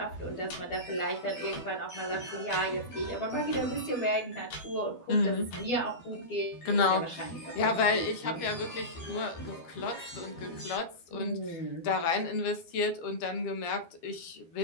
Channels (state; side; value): late; right; 12 ms